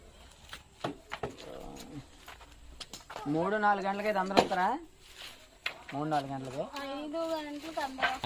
మూడు 4 గంటలకైతే అందరూ ఉంటారా? 3-4 గంటలకి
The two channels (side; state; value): both; identical; correlation 1.00